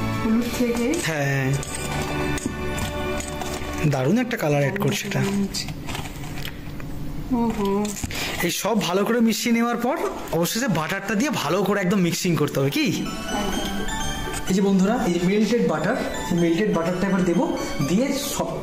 হলুদ থেকে। হ্যাঁ, দারুণ একটা কালার অ্যাড করছে এটা। এই সব ভালো করে মিশিয়ে নেওয়ার পর অবশেষে বাটারটা দিয়ে ভালো করে একদম মিক্সিং করতে হবে, কি? এই যে বন্ধুরা, এই যে মেল্টেড বাটার, মেল্টেড বাটারটা এবার দেবো, দিয়ে সব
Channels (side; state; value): both; identical; correlation 1.00